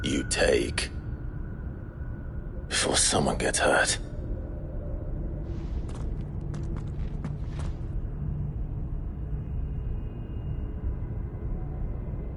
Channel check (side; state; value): both; identical; correlation 1.00